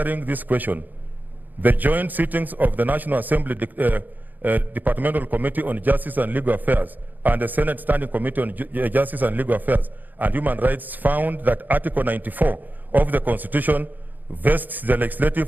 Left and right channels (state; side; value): late; left; 0.085 ms